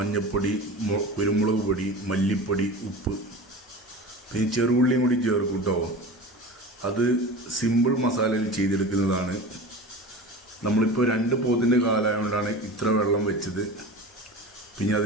കുരുമുളക് പൊടി, മല്ലിപ്പൊടി, ഉപ്പ്, പിന്നെ ചെറുള്ളിയും കൂടി ചേർക്കും കേട്ടോ. അത് സിമ്പിൾ മസാലയിൽ ചെയ്തെടുക്കുന്നതാണ്. നമ്മളിപ്പോൾ 2 പോത്തിൻ്റെ കാലായതുകൊണ്ടാണ് ഇത്ര വെള്ളം വെച്ചത്. പിന്നെ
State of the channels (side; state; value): both; normal; correlation 0.33